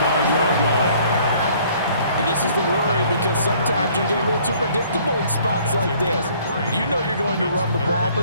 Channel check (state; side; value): inverted; both; correlation -0.58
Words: line. And this is the worry because sometimes you get a little too predictable in spots like this. You know you're going to run the ball,